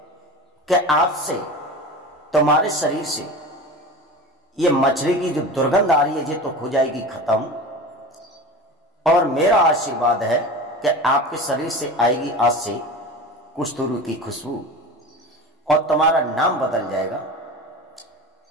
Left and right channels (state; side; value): normal; both; correlation 0.32